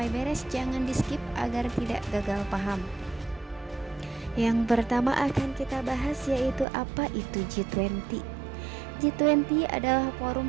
beres, jangan di skip agar tidak gagal paham. Yang pertama akan kita bahas yaitu apa itu G20. G20 adalah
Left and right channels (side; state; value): left; drops out; at 6.7 s